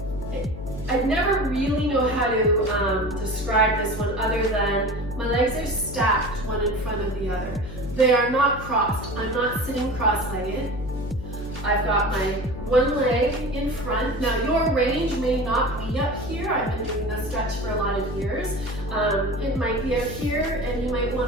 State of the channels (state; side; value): noise; left; hum, 10 dB below the sound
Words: I never really know how to describe this one other than my legs are stacked one in front of the other. They are not crossed. I'm not sitting cross-legged. I've got my one leg in front. Now your range may not be up here. I've been doing this stretch for a lot of years. It might be up here, and you might